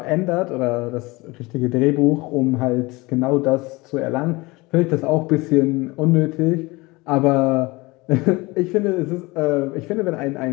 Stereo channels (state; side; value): quieter; right; 23.1 dB